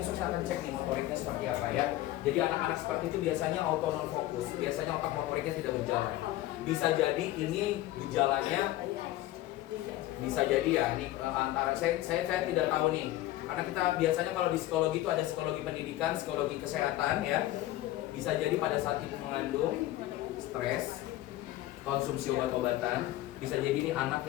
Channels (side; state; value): right; quieter; 15.5 dB